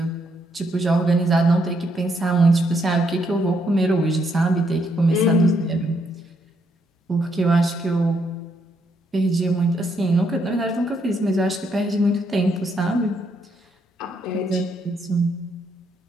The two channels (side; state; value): both; normal; correlation 0.75